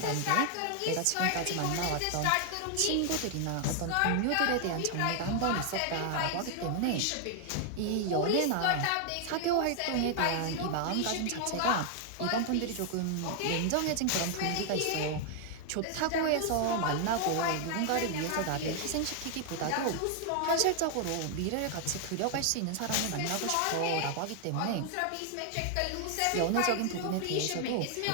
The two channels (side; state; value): both; different; correlation 0.00